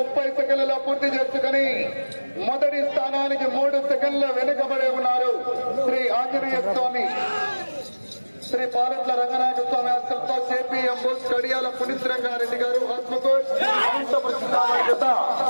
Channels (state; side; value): inverted; both; correlation -1.00